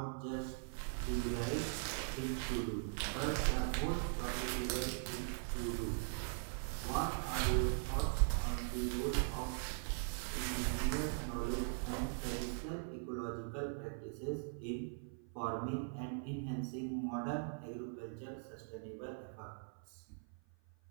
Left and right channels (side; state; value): left; silent; 50 dB below the other